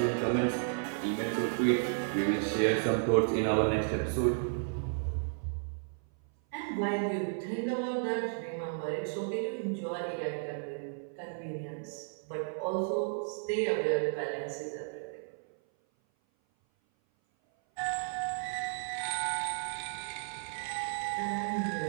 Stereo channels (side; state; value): left; silent; 56 dB below the other